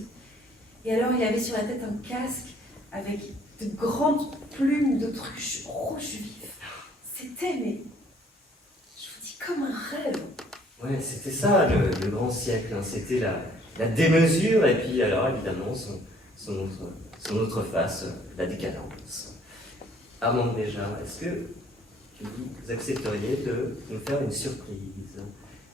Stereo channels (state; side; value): normal; both; correlation 0.60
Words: Et alors, il avait sur la tête un casque avec de grandes plumes d'autruche rouge vif. C'était, mais je vous dis, comme un rêve. Ouais, c'était ça le grand siècle. Hein. C'était la démesure et puis alors évidemment son autre face, la décadence. Armand, déjà, est-ce que vous accepteriez de nous faire une surprise?